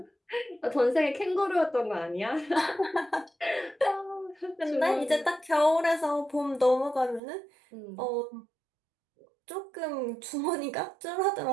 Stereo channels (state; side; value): drops out; left; at 7.2 s